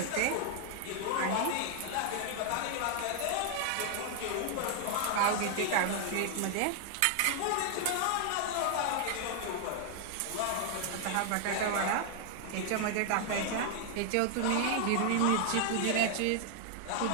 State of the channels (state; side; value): different; both; correlation 0.00